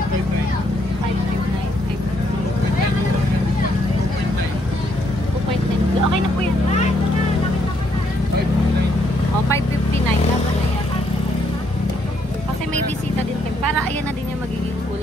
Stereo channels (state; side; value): normal; both; correlation 0.72